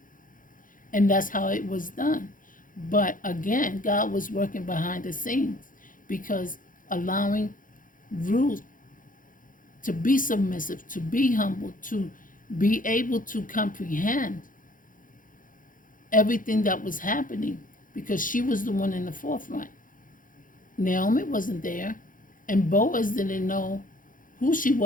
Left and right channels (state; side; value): late; right; 0.39 ms